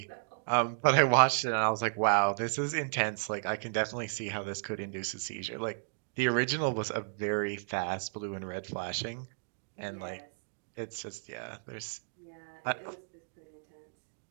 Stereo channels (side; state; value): left; silent; digital silence